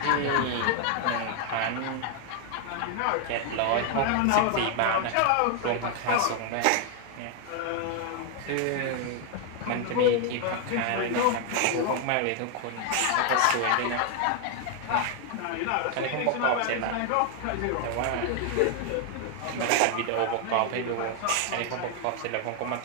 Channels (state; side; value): different; both; correlation 0.00